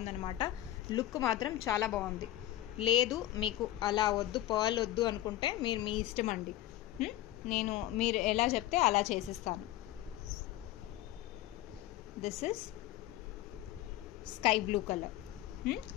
లుక్ మాత్రం చాలా బాగుంది. లేదు మీకు అలా వద్దు, పర్ల్ వద్దు అనుకుంటే మీరు మీ ఇష్టం అండి. మీరు ఎలా చెప్తే అలా చేసిస్తాను. This is sky blue colour,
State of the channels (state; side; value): quieter; right; 14.5 dB